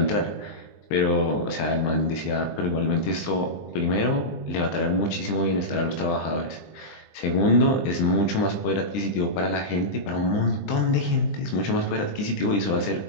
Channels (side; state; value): right; late; 20 ms